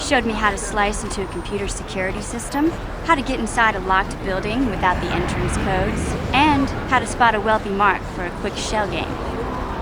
me how to slice into a computer security system, how to get inside a locked building without the entrance codes, and how to spot a wealthy mark for a quick shell game.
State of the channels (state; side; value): identical; both; correlation 1.00